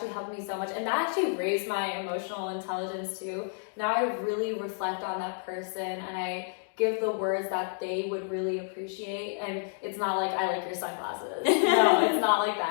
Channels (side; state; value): right; silent; digital silence